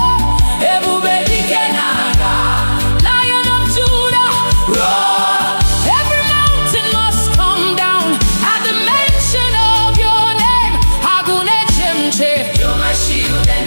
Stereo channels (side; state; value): both; inverted; correlation -1.00